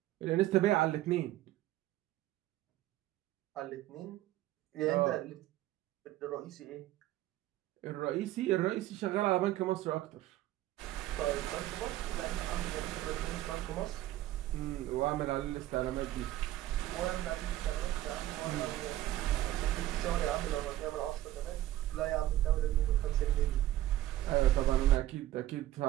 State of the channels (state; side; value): quieter; left; 14.6 dB